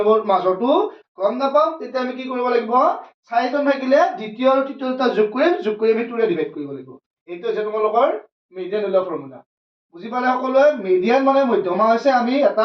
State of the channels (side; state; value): both; identical; correlation 1.00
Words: মাজৰটো গম নাপাম। তেতিয়া আমি কি কৰিব লাগিব? 4জন থাকিলে দ্বিতীয় আৰু তৃতীয় দুটা যোগ কৰি আমি 2 ৰে ডিভাইড কৰিব লাগিব। এইটো হৈছে তোমালোকৰ মিডিয়ান ওলোৱা ফৰ্মুলা। বুজি পালে সকলোৱে? মিডিয়ান মানে মধ্যমা হৈছে আমি এটা